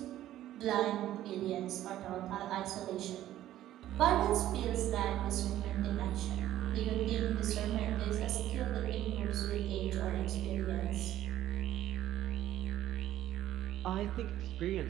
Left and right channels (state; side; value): quieter; left; 13.3 dB